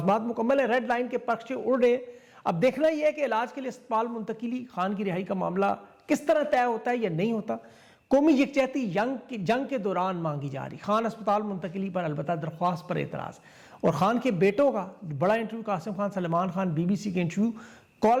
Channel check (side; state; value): both; identical; correlation 1.00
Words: مکمل ہے، ریڈ لائن کے پرچے اڑ رہے ہیں۔ اب دیکھنا یہ ہے کہ علاج کے لیے اسپتال منتقلی، خان کی رہائی کا معاملہ کس طرح طے ہوتا ہے یا نہیں ہوتا۔ قومی یکجہتی جنگ کے دوران مانگی جا رہی، خان اسپتال منتقلی پر البتہ درخواست پر اعتراض، اور خان کے بیٹوں کا بڑا انٹرویو، قاسم خان، سلمان خان، BBC کے انٹرویو،